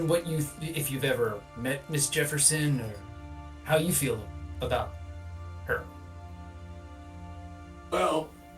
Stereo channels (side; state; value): both; identical; correlation 1.00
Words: if you've ever met Miss Jefferson, or how you feel about her. Well,